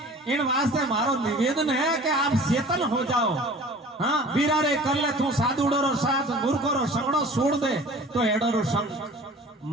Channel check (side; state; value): both; normal; correlation 0.44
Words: इन वास्ते मारो निवेदन है कि आप चेतन हो जाओ हाँ वीरा रे कर ले तू साधुड़ो रो साथ मूर्खो रो संगड़ो छोड़ दे तो एडो रो संग